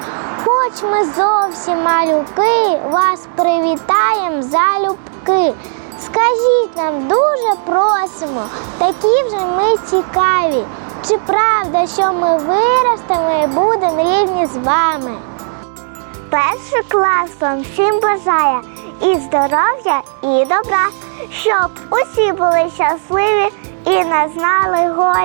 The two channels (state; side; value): silent; left; digital silence